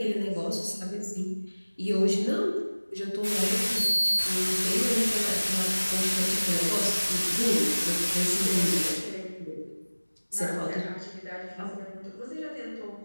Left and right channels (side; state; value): both; inverted; correlation -1.00